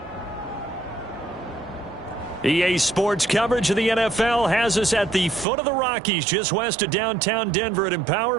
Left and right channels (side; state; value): left; drops out; at 5.5 s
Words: EA Sports coverage of the NFL has us at the foot of the Rockies, just west of downtown Denver at Empower